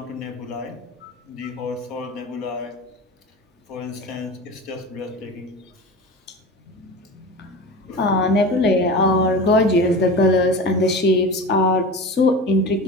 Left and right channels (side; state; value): both; normal; correlation 0.31